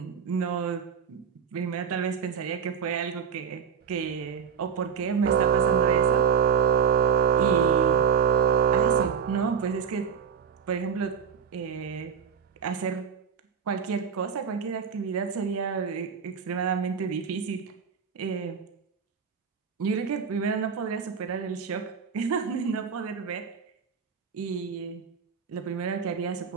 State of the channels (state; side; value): quieter; left; 7.0 dB